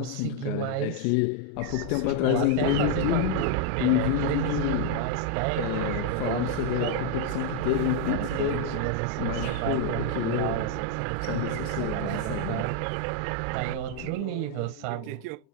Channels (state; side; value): different; both; correlation 0.00